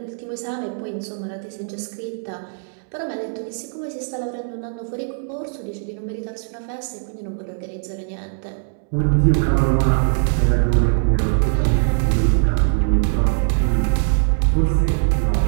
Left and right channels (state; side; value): silent; left; 65 dB below the other